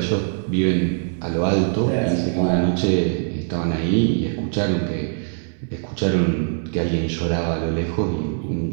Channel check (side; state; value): left; silent; digital silence